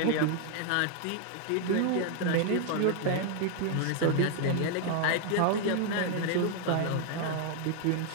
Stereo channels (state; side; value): different; both; correlation 0.00